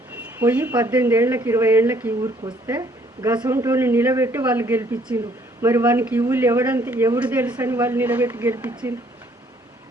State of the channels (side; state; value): both; normal; correlation 0.63